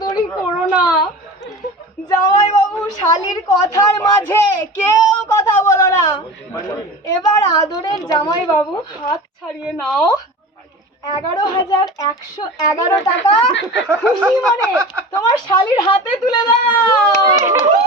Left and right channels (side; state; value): both; normal; correlation 0.34